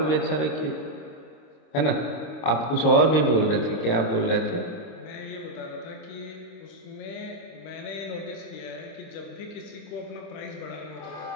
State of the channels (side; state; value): right; late; 26 ms